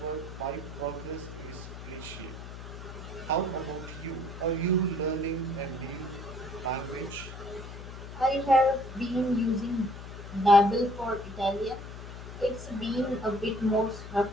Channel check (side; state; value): left; noise; hum, 11 dB below the sound